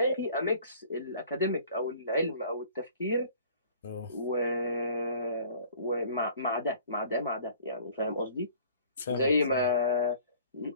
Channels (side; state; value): both; inverted; correlation -0.51